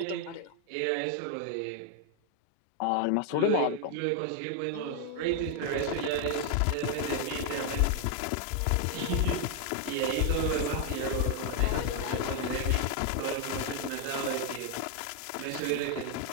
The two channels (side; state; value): both; different; correlation 0.00